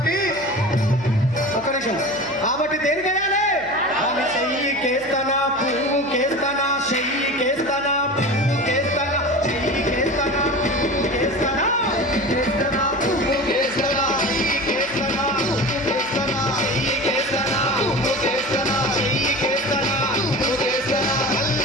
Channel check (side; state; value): left; noise; hum, 21 dB below the sound